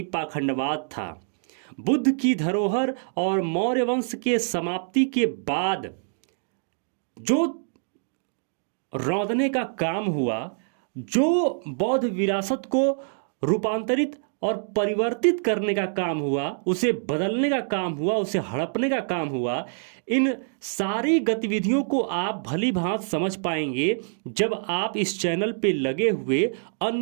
पाखंडवाद था। बुद्ध की धरोहर और मौर्य वंश के समाप्ति के बाद जो रौंदने का काम हुआ, जो बौद्ध विरासत को रूपांतरित और परिवर्तित करने का काम हुआ, उसे बदलने का काम हुआ, उसे हड़पने का काम हुआ, इन सारी गतिविधियों को आप भली भांत समझ पाएंगे जब आप इस चैनल पे लगे हुए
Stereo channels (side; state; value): left; silent; digital silence